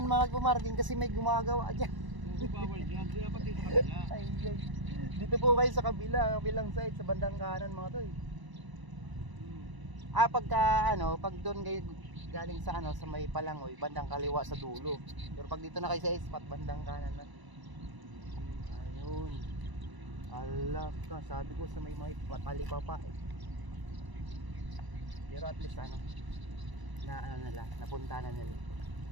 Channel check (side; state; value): left; late; 1.0 ms